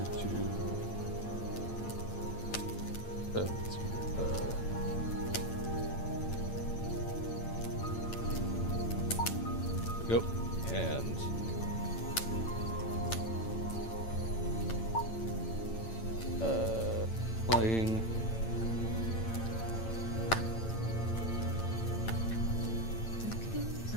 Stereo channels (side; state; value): right; late; 8.9 ms